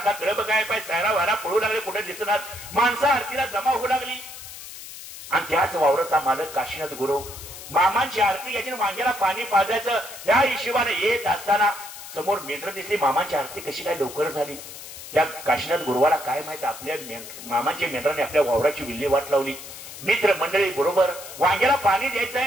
कळप काय पाय सायरा वारा पळू लागले, कुठे दिसणार. माणसं आरतीला जमा होऊ लागली. आणि त्याच वावराचा मालक काशीनाथ गुरु मामांची आरती घ्यायची, वांग्याला पाणी पाजायचं या हिशोबाने येत असताना समोर मेंढर दिसली. मामांची आरती कशी काय लवकर झाली? त्या काशीनाथ गुरुवाला काय माहित, आपल्या मामांच्या मेंढराने आपल्या वावराची विल्हेवाट लावली. मित्र मंडळी बरोबर वांग्याला पाणी द्यायचं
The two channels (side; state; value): left; noise; hiss, 13 dB below the sound